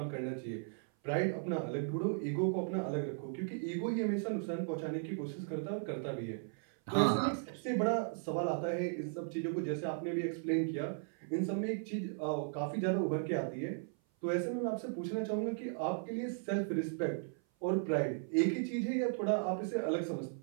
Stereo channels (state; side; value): silent; left; 53 dB below the other